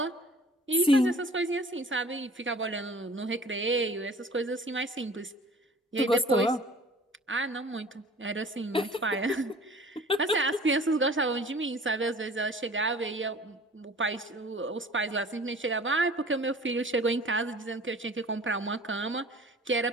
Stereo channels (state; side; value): normal; both; correlation 0.47